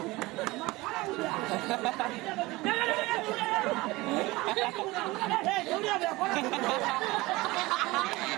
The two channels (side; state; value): left; quieter; 21.1 dB